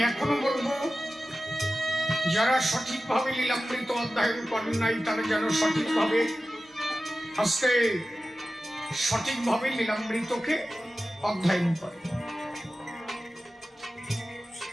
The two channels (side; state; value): both; normal; correlation 0.94